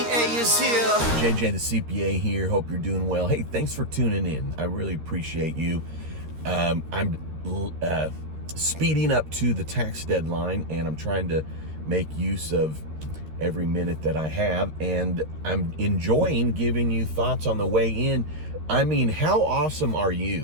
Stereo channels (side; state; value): left; late; 13 ms